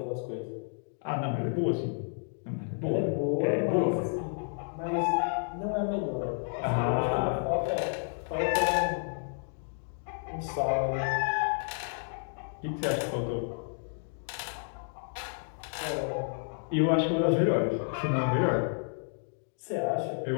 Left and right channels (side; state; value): right; silent; 57 dB below the other